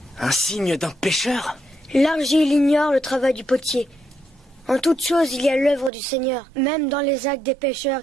Un signe d'un pécheur? L'argile ignore le travail du potier. En toute chose, il y a l'œuvre du Seigneur, même dans les actes des pécheurs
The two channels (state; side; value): drops out; left; at 5.9 s